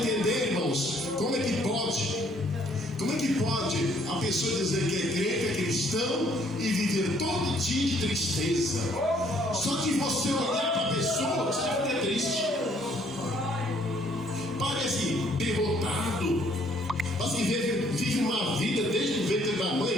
irmãos. Como é que pode? Como é que pode a pessoa dizer que é crente, é cristão e viver todo dia de tristeza? Só que você olhar para a pessoa, você fica triste. Parece derrotado. Parece que vive uma vida desde o ventre da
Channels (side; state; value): both; normal; correlation 0.64